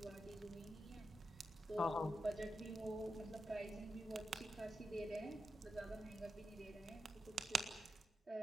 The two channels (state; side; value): normal; both; correlation 0.88